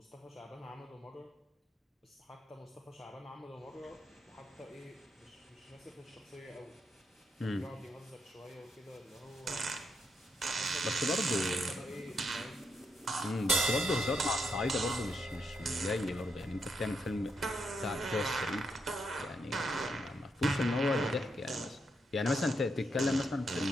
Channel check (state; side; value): normal; both; correlation 0.80